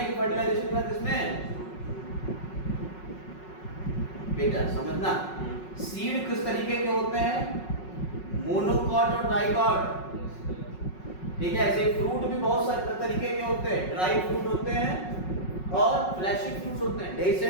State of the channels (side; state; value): right; late; 5.4 ms